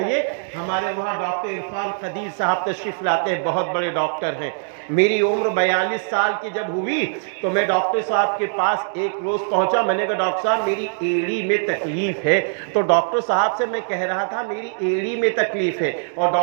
ہمارے وہاں ڈاکٹر عرفان قدیر صاحب تشریف لاتے ہیں، بہت بڑے ڈاکٹر ہیں۔ میری عمر 42 سال کی جب ہوئی تو میں ڈاکٹر صاحب کے پاس ایک روز پہنچا، میں نے کہا ڈاکٹر صاحب میری ایڑی میں تکلیف ہے، تو ڈاکٹر صاحب سے میں کہہ رہا تھا میری ایڑی میں تکلیف ہے، اور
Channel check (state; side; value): silent; left; digital silence